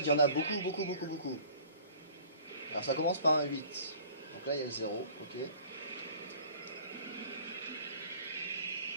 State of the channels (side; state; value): both; inverted; correlation -0.48